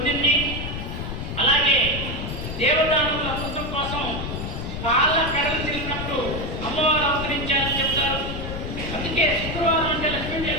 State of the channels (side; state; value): left; noise; rumble, 6 dB below the sound